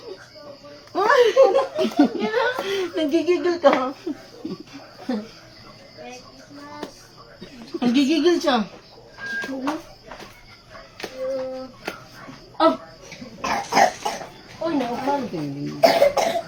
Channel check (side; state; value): both; identical; correlation 1.00